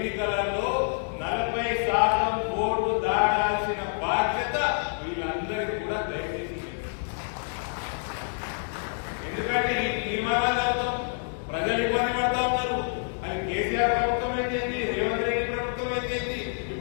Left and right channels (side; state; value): right; silent; digital silence